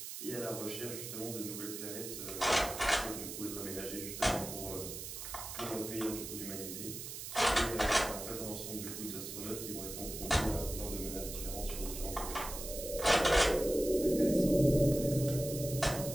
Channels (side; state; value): right; noise; hiss, 8 dB below the sound